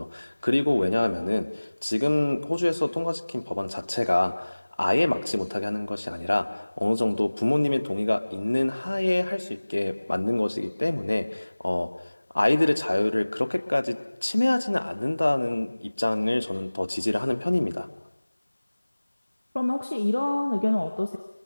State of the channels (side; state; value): both; inverted; correlation -1.00